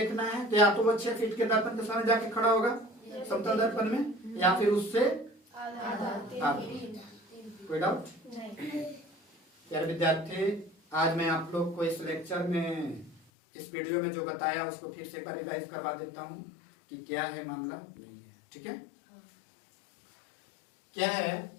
है, तो या तो वो 6 फीट के दर्पण के सामने जाके खड़ा होगा समतल दर्पण में, या फिर उससे आधा। कोई डाउट? प्यारे विद्यार्थी, आज मैं आप लोग को इस लेक्चर में इस वीडियो में जो बताया उसको फिर से एक बार रिवाइज करवा देता हूँ कि क्या है मामला नहीं है। ठीक है, क्या है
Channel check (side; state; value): right; drops out; at 13.2 s